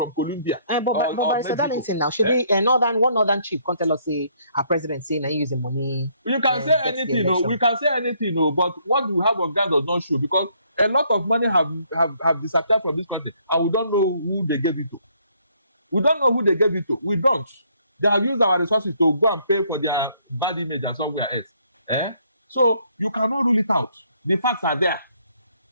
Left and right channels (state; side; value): inverted; both; correlation -0.67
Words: Colombia. But Barrister Darlington now, should one northern chief come tell us say our president saying I use the money. You can say anything, we can say anything, but what we have of ground does not show because a lot of money have disappeared from this country and we don't know who they gave it to. We don't know who they gave it to. We don't. They have used our resources to go and pay for their bad image and somewhere else. So you cannot rule it out. The facts are there.